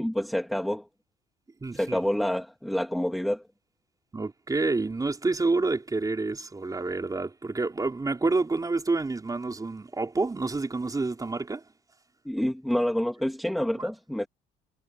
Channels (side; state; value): both; normal; correlation 0.90